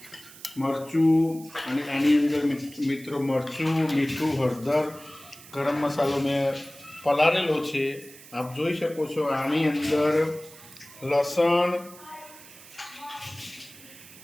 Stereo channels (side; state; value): right; noise; hiss, 19 dB below the sound